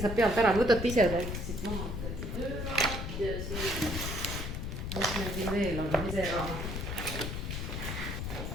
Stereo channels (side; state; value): left; noise; rumble, 4 dB below the sound